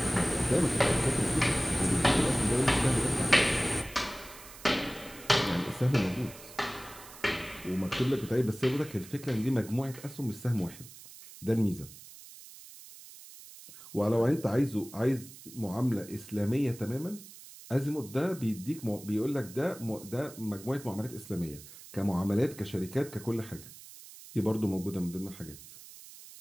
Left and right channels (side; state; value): right; noise; hiss, 17 dB below the sound